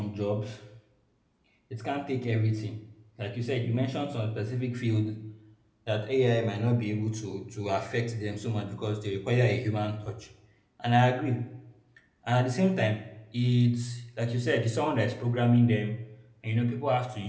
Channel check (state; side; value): identical; both; correlation 1.00